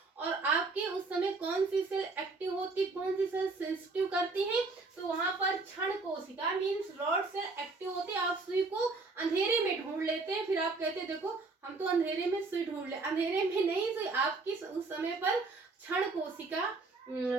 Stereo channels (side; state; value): left; quieter; 3.7 dB